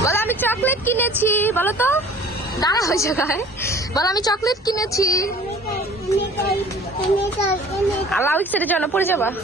বলো আমি চকলেট কিনেছি, বলো তো। দাঁড়া হয়ে জায়গায় বলো আমি চকলেট কিনেছি। আল্লাহ সেটা জন্য পড়ে যাবা।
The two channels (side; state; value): both; normal; correlation 0.48